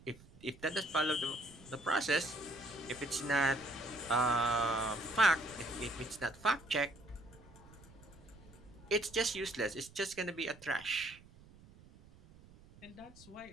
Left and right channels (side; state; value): right; noise; rumble, 22 dB below the sound